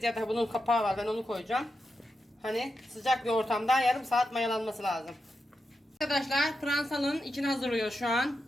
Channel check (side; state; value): both; normal; correlation 0.88